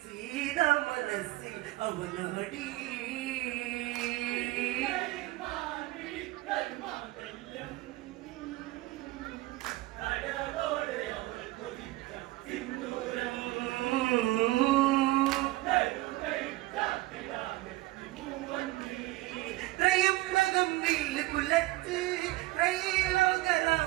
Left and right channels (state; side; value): quieter; left; 19.0 dB